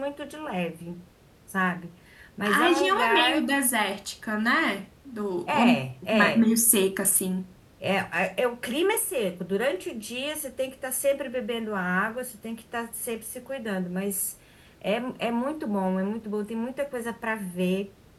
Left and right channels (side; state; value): both; identical; correlation 1.00